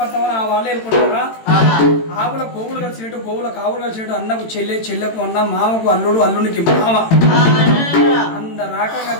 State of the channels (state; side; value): late; right; 18 ms